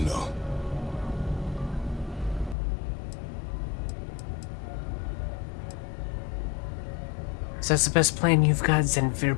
know. So that's the best plan you've got, then we're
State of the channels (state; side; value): drops out; right; at 2.6 s